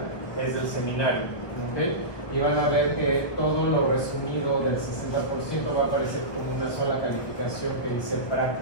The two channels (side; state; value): right; late; 1.2 ms